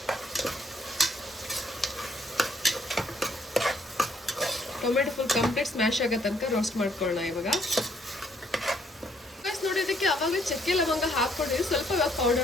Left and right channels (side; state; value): both; normal; correlation 0.69